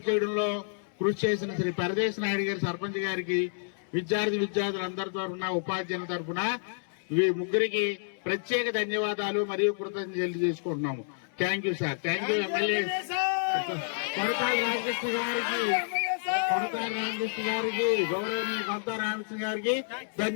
చేయడంలో కృషి చేసిన శ్రీ పరదేశ్ నాయుడు గారి సర్పంచ్ గారికి, విద్యార్థులందరి తరఫున ఉపాధ్యాయుల తరఫున ముగ్గురికి ప్రత్యేక ధన్యవాదాలు మరియు కృతజ్ఞతలు తెలియజేసుకుంటున్నాము. Thank you sir. Thank you MLA Konathala Ramakrishna గారికి, గౌరవనీయ కొనతాల రామకృష్ణ గారికి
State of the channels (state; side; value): silent; right; 58 dB below the other